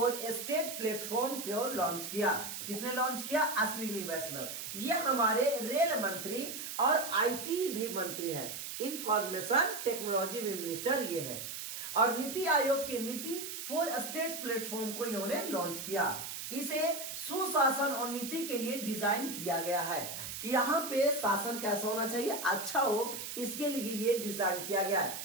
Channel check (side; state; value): right; noise; hiss, 7 dB below the sound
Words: स्टेट प्लेटफॉर्म को लॉन्च किया। किसने लॉन्च किया। अश्विनी वैष्णव। ये हमारे रेल मंत्री और आईटी भी मंत्री हैं। इंफॉर्मेशन टेक्नोलॉजी मिनिस्टर ये है। और नीति आयोग के नीति फॉर स्टेट्स प्लेटफॉर्म को इन्होंने लॉन्च किया। इसे सुशासन और नीति के लिए डिजाइन किया गया है कि यहाँ पे शासन कैसा होना चाहिए, अच्छा हो, इसके लिए ये डिजाइन किया गया